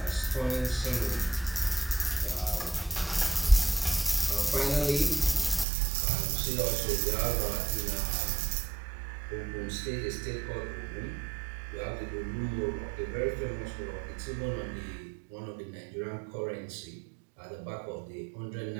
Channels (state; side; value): drops out; left; at 5.7 s